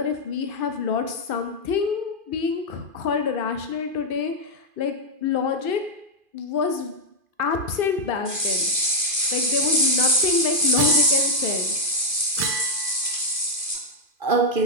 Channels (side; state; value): left; late; 2.5 ms